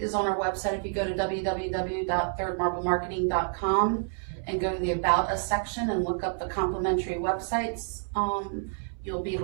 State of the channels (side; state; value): left; silent; 59 dB below the other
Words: is on our website. If you go to www.thirdmarblemarketing.com and go to the About Us section and look up the complimentary websites, you'll be able